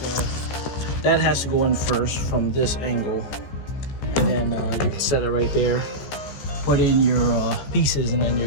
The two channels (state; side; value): late; right; 14 ms